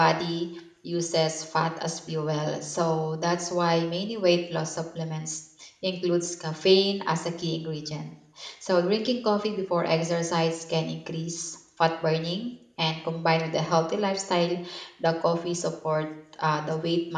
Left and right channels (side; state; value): both; identical; correlation 1.00